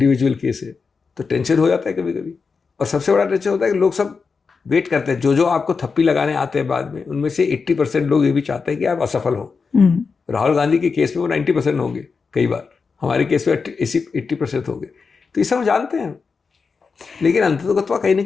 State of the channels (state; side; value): quieter; right; 5.0 dB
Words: केस है, तो टेंशन हो जाता है कभी कभी। और सबसे बड़ा टेंशन होता है कि लोग सब वेट करते हैं, जो आपको थप्पी लगाने आते हैं बाद में, उनमें से 80% लोग ये भी चाहते हैं कि आप असफल हो। राहुल गांधी के केस में वो 90% होंगे, कई बार हमारे केस में 80% होंगे। तो ये सब जानते हैं, लेकिन अंततः कहीं ना